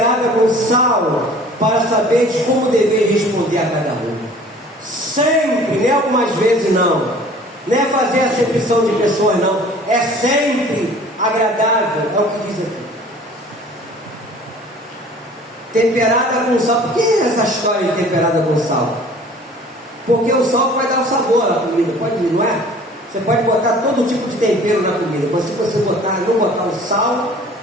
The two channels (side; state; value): both; normal; correlation 0.49